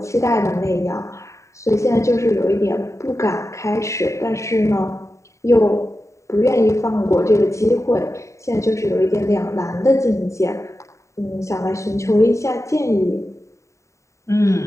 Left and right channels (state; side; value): late; right; 0.14 ms